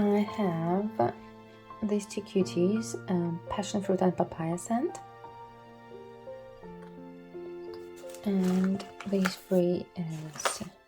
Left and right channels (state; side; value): identical; both; correlation 1.00